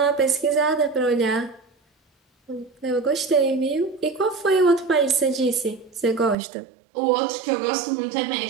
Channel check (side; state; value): left; drops out; at 6.4 s